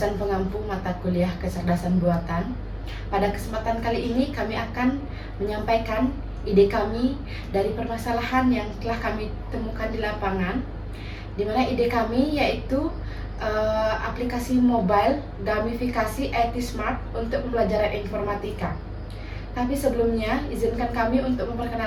pengampu mata kuliah kecerdasan buatan. Pada kesempatan kali ini kami akan menyampaikan ide kami dari permasalahan yang telah kami temukan di lapangan, di mana ide kami yaitu aplikasi mobile gamifikasi IT Smart untuk pembelajaran informatika. Tapi sebelumnya, izinkan kami untuk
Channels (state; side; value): identical; both; correlation 1.00